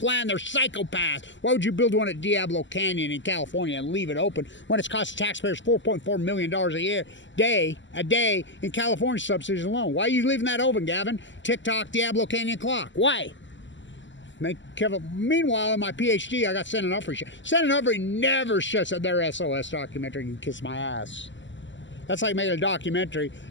They're psychopaths. Why would you build one at Diablo Canyon in California and leave it open when it's costing taxpayers $4.4 million a day in California subsidies alone? Why are you leaving that open, Gavin? TikTok, Diablo Canyon clock. Why? Meanwhile, in my PhD, I got Sen and Humphrey. Sen and Humphrey never shuts up their SOS documentary. You can kiss my ass. That's like making a documentary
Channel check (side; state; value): right; late; 0.54 ms